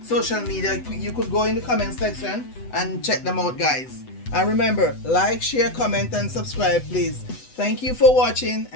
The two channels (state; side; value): late; right; 8.0 ms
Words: social media. You could go in the comment section and check them out, guys. And remember, like, share, comment and subscribe please. Thank you for watching